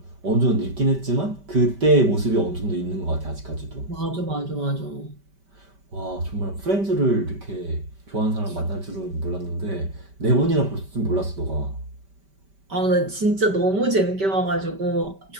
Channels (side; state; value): left; late; 5.1 ms